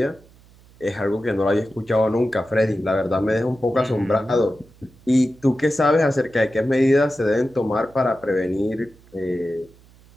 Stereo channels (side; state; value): right; noise; hum, 27 dB below the sound